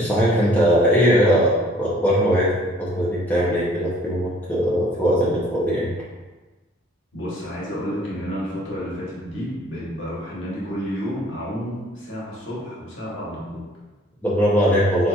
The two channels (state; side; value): normal; both; correlation 0.56